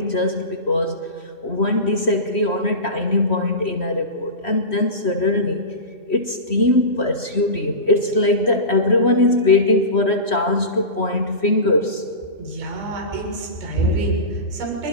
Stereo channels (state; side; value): late; right; 3.1 ms